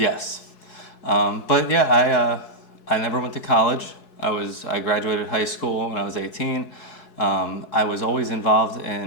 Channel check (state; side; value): late; right; 4.7 ms